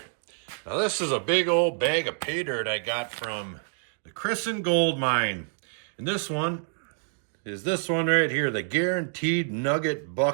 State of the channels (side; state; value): left; silent; digital silence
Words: Now this is a big old bag of pay dirt I got from the Christened Gold Mine. And this one is this one right here, the Guaranteed Nugget